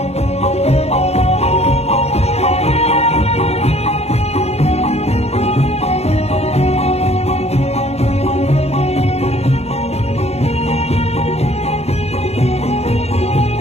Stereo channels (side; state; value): right; late; 0.31 ms